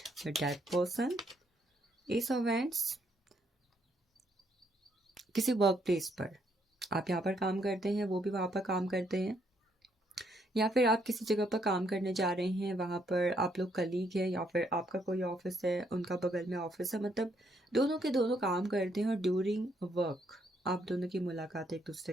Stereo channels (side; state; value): both; normal; correlation 0.72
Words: with that person. Ace of wands, किसी वर्क प्लेस पर आप यहाँ पर काम करते हैं, वो भी वहाँ पर काम करते हैं, या फिर आप किसी जगह पर काम करने जा रहे हैं, वहाँ पर आप लोग कलीग हैं, या फिर आपका कोई ऑफिस है, उनका बगल में ऑफिस है, मतलब दोनों के दोनों काम करते हैं और ड्यूरिंग वर्क आप दोनों की मुलाकात एक